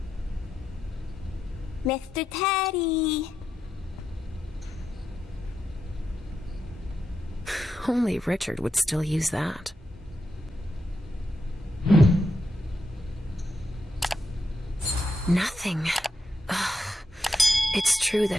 Mr. Teddy! Only Richard would still use that. Nothing. Ugh. It's true that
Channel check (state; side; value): normal; both; correlation 0.84